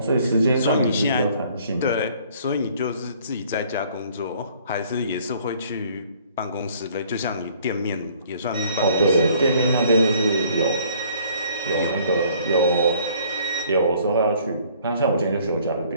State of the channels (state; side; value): inverted; both; correlation -0.59